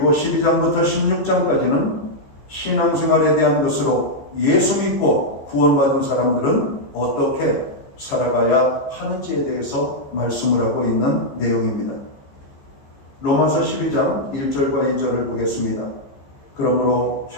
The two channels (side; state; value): right; late; 14 ms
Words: 12장부터 16장까지는 신앙생활에 대한 것으로 예수 믿고 구원받은 사람들은 어떻게 살아가야 하는지에 대해서 말씀을 하고 있는 내용입니다. 로마서 12장 1절과 2절을 보겠습니다. 그러므로